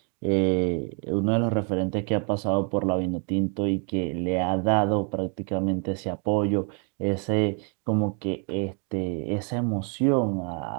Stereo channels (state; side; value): quieter; left; 38.8 dB